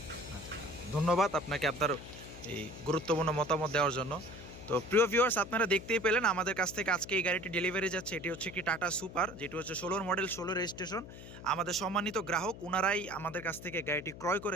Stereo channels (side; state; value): left; noise; hum, 14 dB below the sound